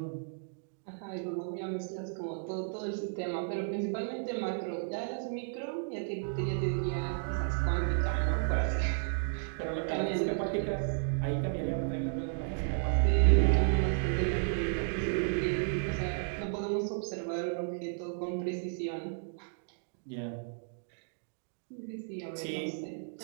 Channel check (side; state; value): left; silent; digital silence